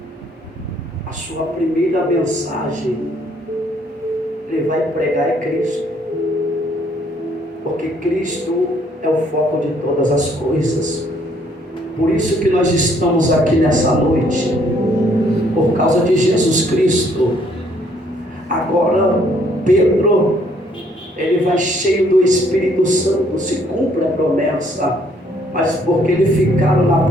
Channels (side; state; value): both; normal; correlation 0.65